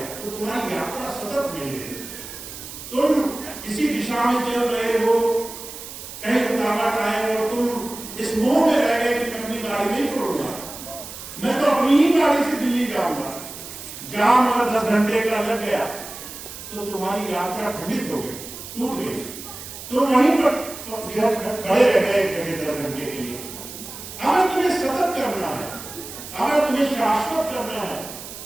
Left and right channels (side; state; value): right; noise; hiss, 12 dB below the sound